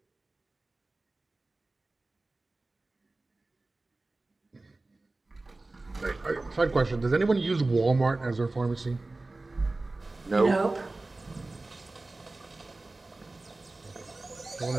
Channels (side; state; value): left; quieter; 3.1 dB